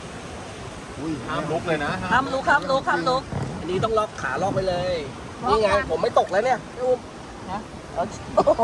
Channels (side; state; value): both; identical; correlation 1.00